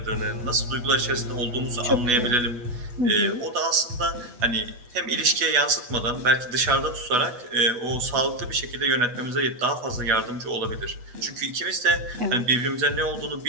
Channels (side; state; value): left; late; 8.2 ms